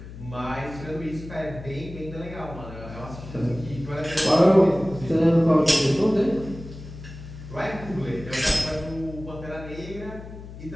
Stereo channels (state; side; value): noise; left; hum, 13 dB below the sound